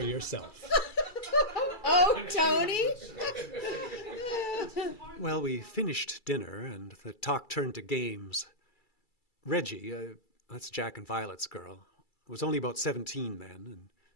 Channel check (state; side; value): late; right; 2.3 ms